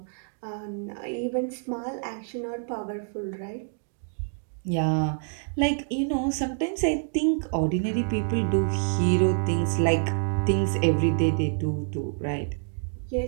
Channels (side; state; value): left; silent; 60 dB below the other